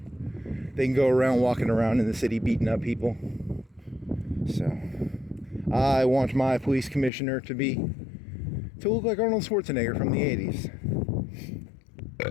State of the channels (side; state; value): right; drops out; at 7.1 s